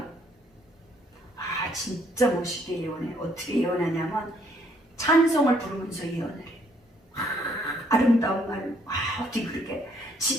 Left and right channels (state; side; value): normal; both; correlation 0.66